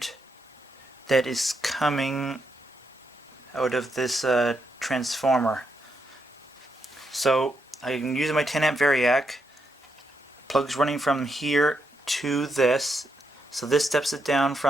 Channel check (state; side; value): normal; both; correlation 0.80